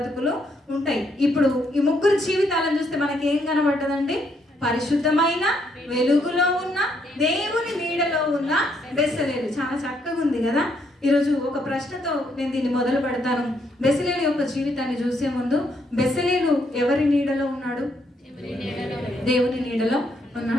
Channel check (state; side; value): normal; both; correlation 0.73